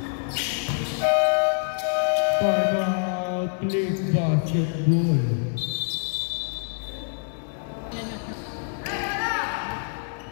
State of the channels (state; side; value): silent; right; 61 dB below the other